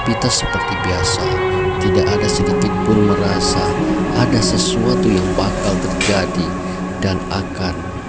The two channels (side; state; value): both; identical; correlation 1.00